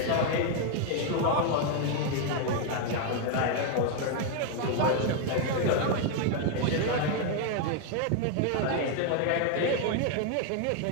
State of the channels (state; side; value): different; both; correlation 0.01